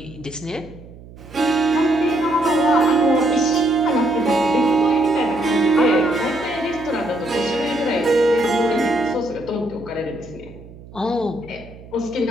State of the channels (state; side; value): noise; right; hum, 19 dB below the sound